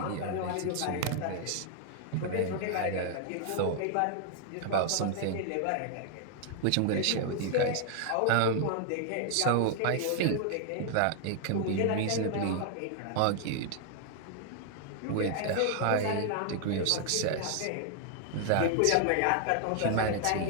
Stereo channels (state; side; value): different; both; correlation 0.00